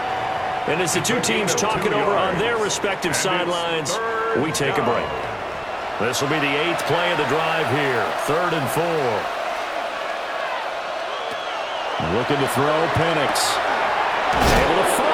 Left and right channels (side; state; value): both; identical; correlation 1.00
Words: And as the two teams talk it over on their respective sidelines, we take a break. This will be the 8th play of the drive here. 3rd and 4. Looking to throw, Penix. Able to